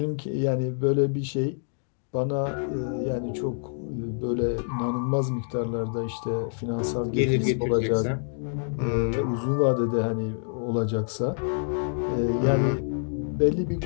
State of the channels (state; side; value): silent; right; digital silence